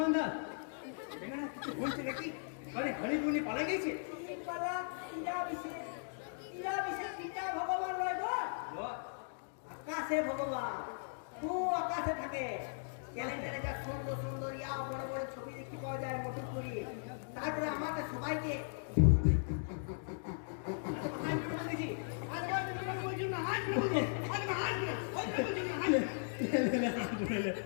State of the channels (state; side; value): silent; right; digital silence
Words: দাস দেখে না কিছু বলছে নাকি? আরে হরিপুনি পালা গেছে। পালা ইরা বিশেষ পিতা ভগবান নয় গো, আকাশে ভগবান। তু আকাশে থাকে, ক্যালেন্ডারে যা সুন্দর সুন্দর ইয়া বড় বড় ছবি দেখতে পাওয়া যায় মোটর করি। তারপরে আমাকে সবাইকে